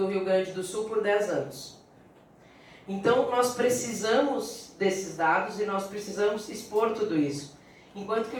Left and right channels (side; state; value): both; identical; correlation 1.00